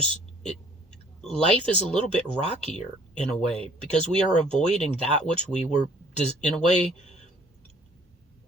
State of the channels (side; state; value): both; normal; correlation 0.57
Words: life is a little bit rockier in a way, because we are avoiding that which we were in a way